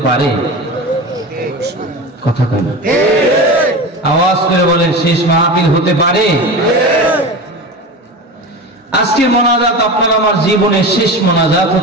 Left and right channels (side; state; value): both; normal; correlation 0.28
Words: পারে। কথা কয় না? আওয়াজ করে বলেন, শেষ মাহফিল হতে পারে। আজকের মোনাজাত আপনার আমার জীবনের শেষ মোনাজাত